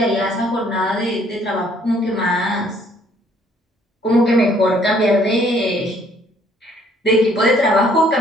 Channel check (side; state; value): both; normal; correlation 0.63